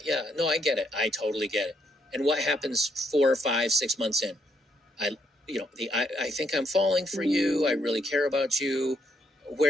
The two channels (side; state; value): both; normal; correlation 0.74